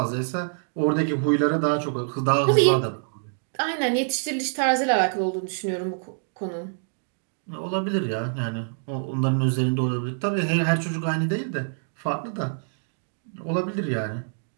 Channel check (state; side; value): silent; left; digital silence